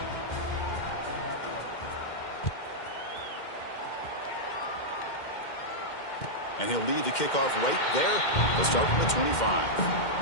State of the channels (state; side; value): late; right; 2.1 ms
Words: And he'll lead the kickoff right there. They'll start from the 25.